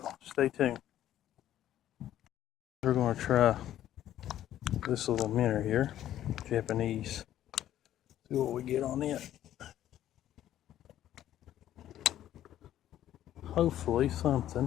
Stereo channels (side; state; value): right; quieter; 12.1 dB